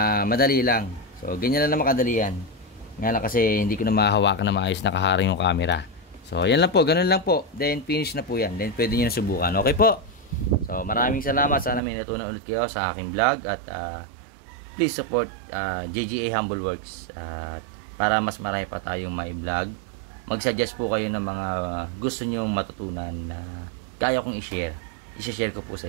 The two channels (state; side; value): drops out; left; at 11.8 s